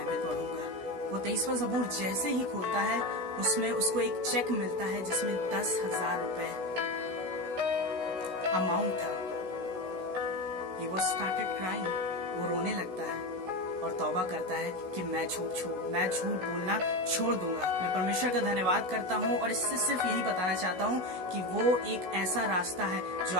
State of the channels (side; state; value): left; late; 16 ms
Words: पढ़ूंगा। वो 23वां ज़बूर जैसे ही खोलता है उसमें उसको एक चेक मिलता है जिसमें 10,000 रुपए अमाउंट था। He was started crying, वो रोने लगता है और तौबा करता है कि मैं झूठ बोलना छोड़ दूंगा। मैं परमेश्वर का धन्यवाद करता हूँ और इससे सिर्फ यही बताना चाहता हूँ कि वो एक ऐसा रास्ता है जो